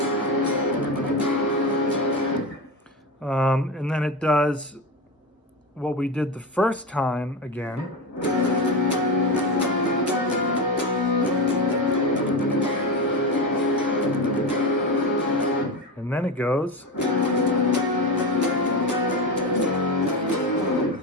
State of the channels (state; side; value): normal; both; correlation 0.19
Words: And then it does what we did the first time again. And then it goes.